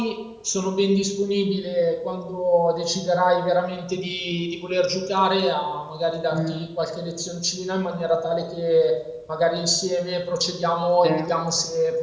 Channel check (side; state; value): both; identical; correlation 1.00